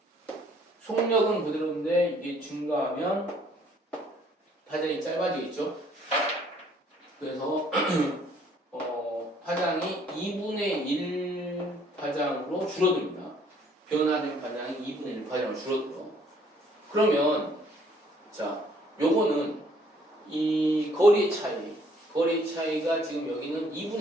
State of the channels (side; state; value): both; normal; correlation 0.62